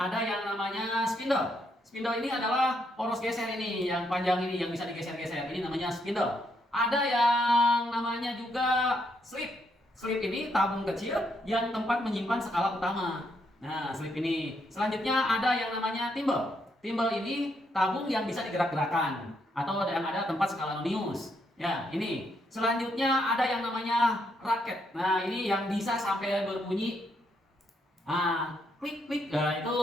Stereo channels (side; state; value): both; normal; correlation 0.76